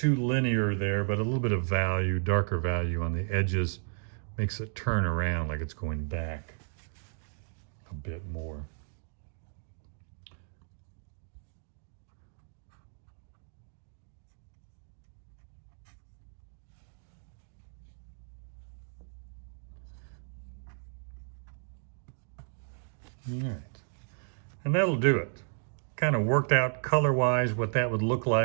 linear there, but a little bit of value, darker value on the edges makes it turn around like it's going back a bit more. All right, and that'll do it. Kind of worked out color-wise what that would look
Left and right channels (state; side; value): silent; left; 56 dB below the other